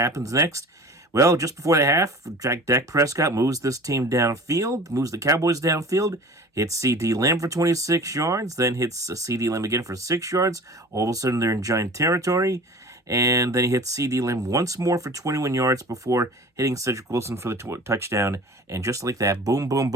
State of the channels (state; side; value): normal; both; correlation 0.41